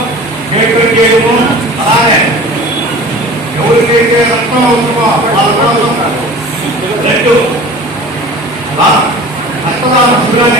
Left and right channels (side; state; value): both; normal; correlation 0.41